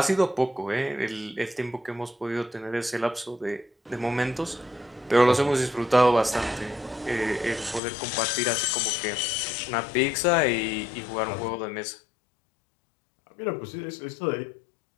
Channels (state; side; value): drops out; right; at 7.8 s